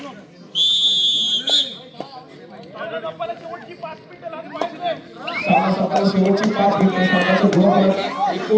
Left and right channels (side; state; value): both; identical; correlation 1.00